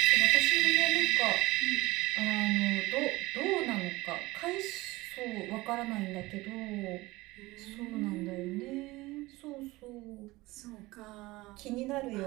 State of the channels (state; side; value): quieter; left; 20.4 dB